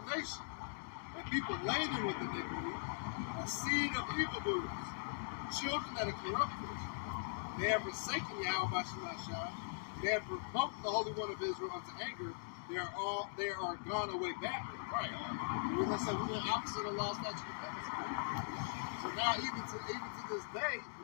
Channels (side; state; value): right; silent; digital silence